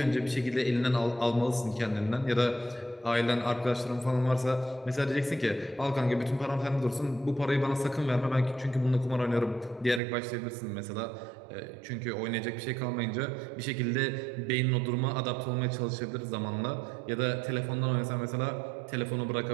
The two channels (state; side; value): drops out; left; at 10.0 s